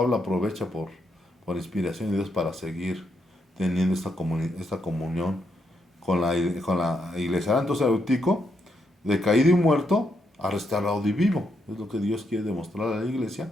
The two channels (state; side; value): normal; both; correlation 0.79